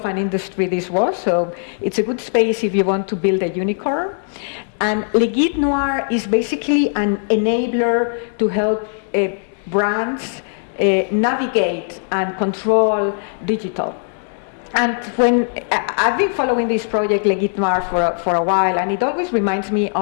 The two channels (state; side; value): silent; right; digital silence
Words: an industry this was. So it's a good space if you want to build a unicorn. And Le Guide Noir is basically an enabler to help brands navigate and control digital. And when I've been following this project, Le Guide Noir, for a while, and it always reminds me